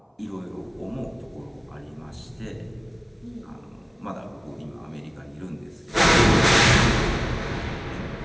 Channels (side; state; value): both; identical; correlation 1.00